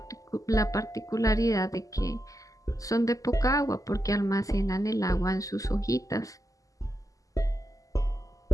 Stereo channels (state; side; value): late; right; 0.17 ms